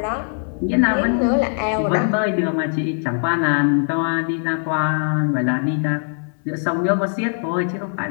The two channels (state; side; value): silent; right; 65 dB below the other